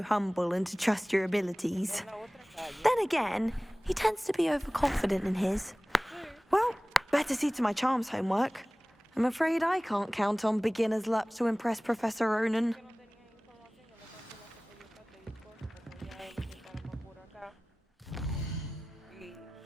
humble and to trust your abilities. Then again, he tends to be overconfident in his. Well, better see to my charms homework. I'm afraid I can't count on beginner's luck to impress Professor Ronan.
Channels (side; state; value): both; normal; correlation 0.98